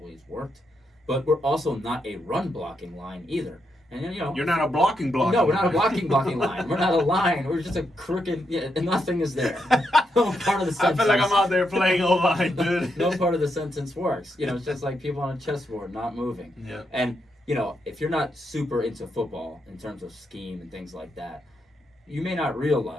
worked. But we're also not a run blocking line either. And you're not a blocking line. No, we're not a blocking line. We're not a line. We're just a crooked. And nothing is there. No part of the sentence. I feel like I'm out there playing O-line, dude. No part of the sentence works. It's just like people on a chessboard not moving. Yeah. And if you're not super into football in terms of scheme and things like that, you may not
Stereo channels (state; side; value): normal; both; correlation 0.81